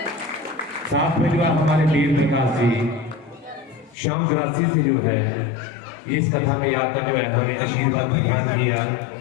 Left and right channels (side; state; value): right; drops out; at 4.0 s